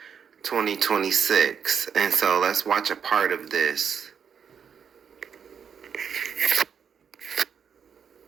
2026. And so let's watch a part of this.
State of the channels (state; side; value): quieter; left; 7.2 dB